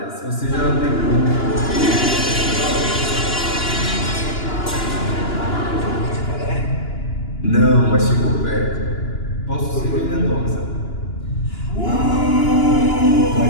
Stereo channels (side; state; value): right; late; 2.9 ms